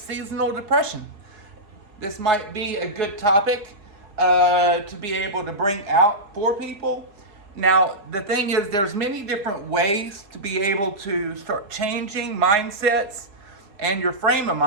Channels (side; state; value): left; late; 4.7 ms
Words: depression. This might be a good topic to be able to bring out for people. Now, the thing is, there's many different ways to be able to start changing mindsets and your frame of